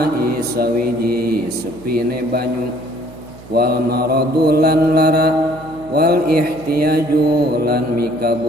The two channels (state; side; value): noise; right; hum, 19 dB below the sound